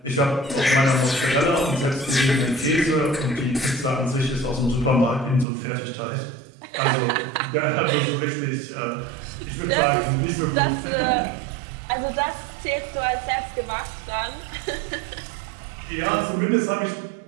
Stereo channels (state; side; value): drops out; left; at 5.5 s